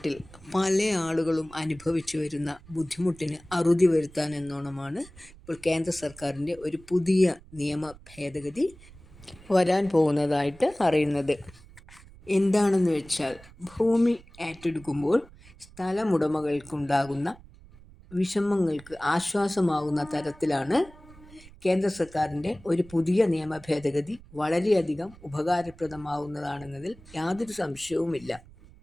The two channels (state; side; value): noise; right; rumble, 22 dB below the sound